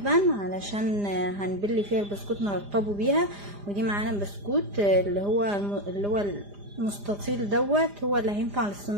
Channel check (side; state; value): left; late; 4.9 ms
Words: علشان هنبلي فيها البسكوت نرطبه بيها. ودي معانا بسكوت اللي هو المستطيل دوت، هو اللي هينفع